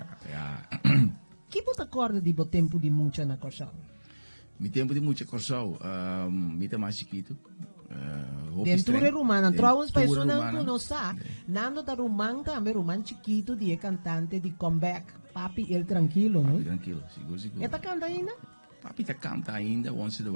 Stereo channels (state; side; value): inverted; both; correlation -1.00